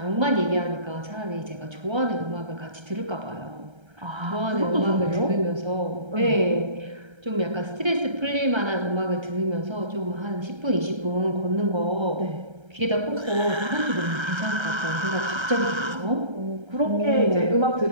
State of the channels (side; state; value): left; late; 1.3 ms